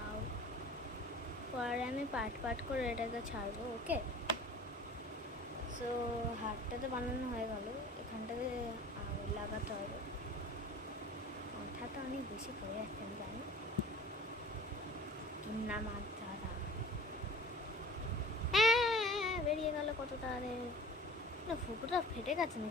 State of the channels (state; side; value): normal; both; correlation 0.43